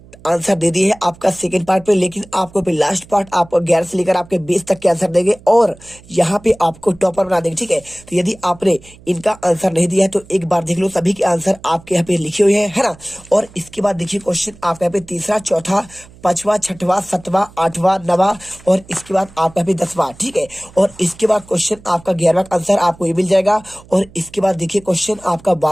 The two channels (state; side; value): noise; right; hum, 23 dB below the sound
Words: आंसर दे दिए है आपका सेकंड पार्ट पे, लेकिन आपको पे लास्ट पार्ट आपको 11 से लेकर आपके 20 तक के आंसर देंगे और यहाँ पे आपको टॉपर बना देंगे। ठीक है, तो यदि आपने इनका आंसर नहीं दिया है तो एक बार देख लो, सभी के आंसर आपके यहाँ पे लिखे हुए हैं, है ना। और इसके बाद देखिए क्वेश्चन आपका यहाँ पे तीसरा, चौथा, पांचवा, छठवा, सातवां, आठवां, नवा और इसके बाद आपका भी 10वां। ठीक है, और इसके बाद क्वेश्चन आपका 11वां का आंसर आपको ये मिल जाएगा और इसके बाद देखिए क्वेश्चन आपका